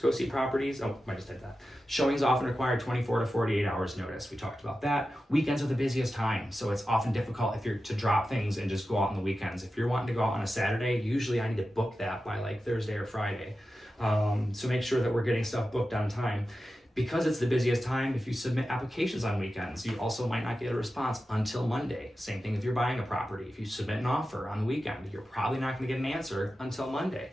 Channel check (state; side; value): normal; both; correlation 0.92